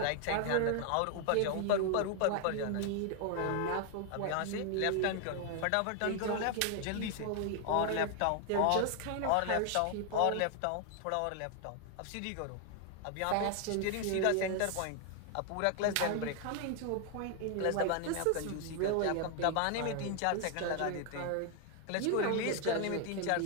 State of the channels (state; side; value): different; both; correlation 0.00